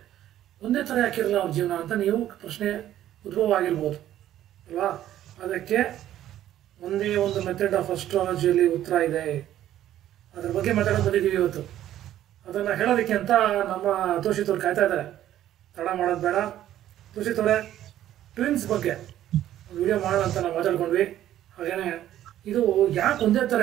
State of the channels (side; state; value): left; quieter; 12.4 dB